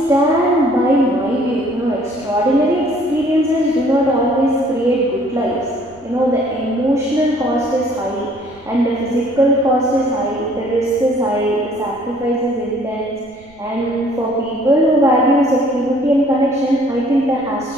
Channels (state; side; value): noise; right; rumble, 28 dB below the sound